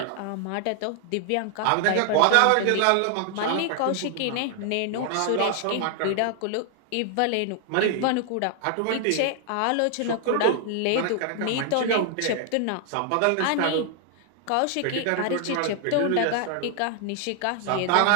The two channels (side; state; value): both; different; correlation 0.00